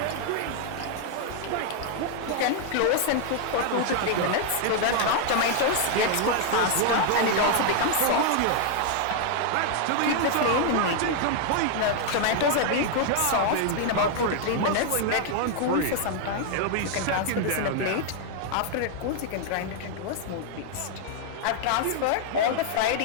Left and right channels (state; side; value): different; both; correlation 0.00